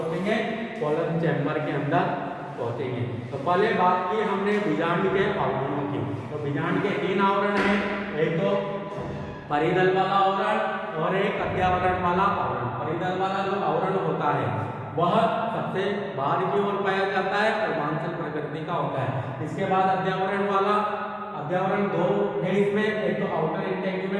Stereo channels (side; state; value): both; identical; correlation 1.00